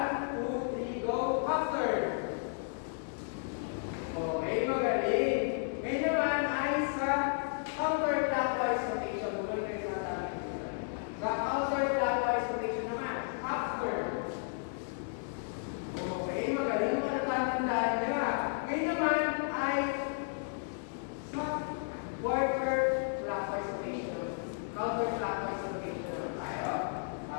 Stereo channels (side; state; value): right; silent; digital silence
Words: 2, 3, go, half turn. Okay, magaling. Ngayon naman ay sa counterclockwise rotation. Bumalik kayo sa atin. Sa counterclockwise rotation naman, half turn. Okay, magaling. Matatandaan nyo. Ngayon naman ay quarter clockwise rotation, counterclockwise rotation naman tayo.